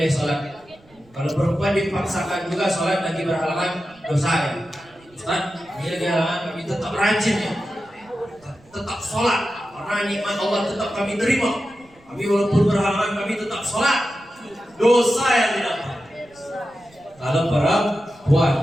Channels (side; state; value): right; noise; rumble, 29 dB below the sound